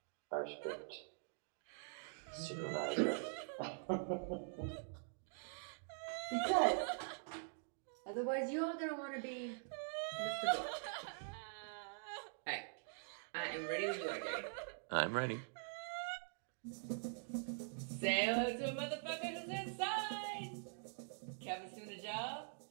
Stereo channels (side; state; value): left; silent; digital silence